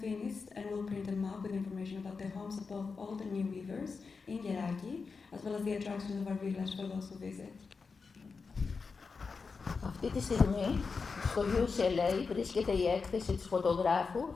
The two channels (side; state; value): right; quieter; 4.8 dB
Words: finished and will print a map with information about the homes of both old and new weavers in Yeraki, as well as the attractions of our village for those who visit. Αυτή τη στιγμή στο UCLA βρίσκεται η έκθεση της φωτογράφου